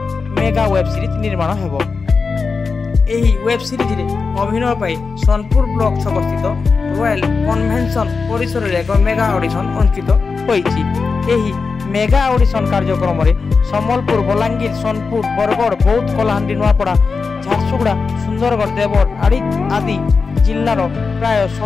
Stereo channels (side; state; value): right; quieter; 4.7 dB